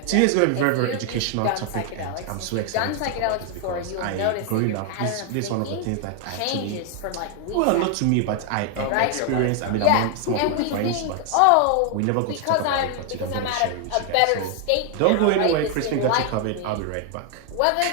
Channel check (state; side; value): different; both; correlation 0.00